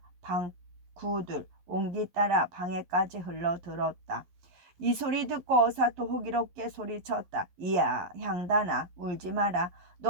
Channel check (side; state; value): left; late; 11 ms